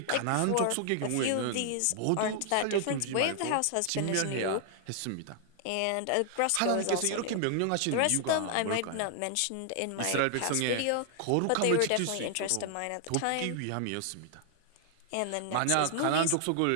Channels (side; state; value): both; different; correlation 0.00